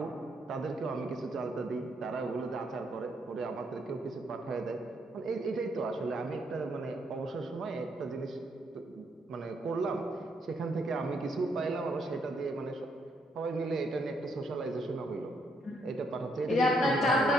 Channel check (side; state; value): both; normal; correlation 0.74